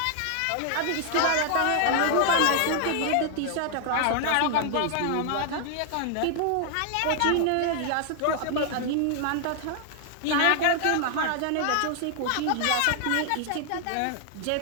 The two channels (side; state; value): both; different; correlation 0.00